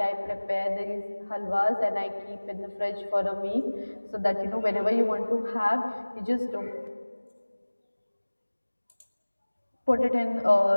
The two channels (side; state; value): both; inverted; correlation -1.00